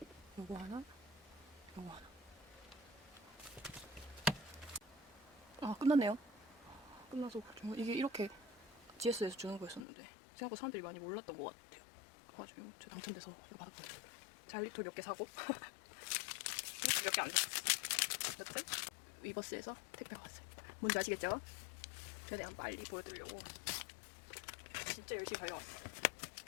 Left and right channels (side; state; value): right; drops out; at 9.9 s